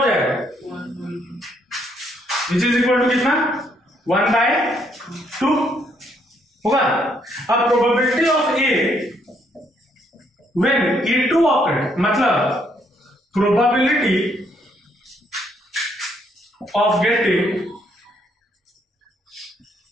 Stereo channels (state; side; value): normal; both; correlation 0.71